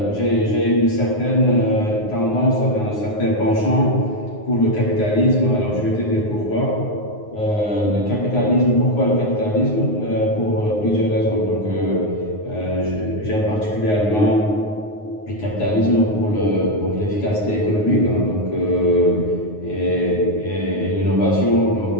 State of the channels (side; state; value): right; late; 9.6 ms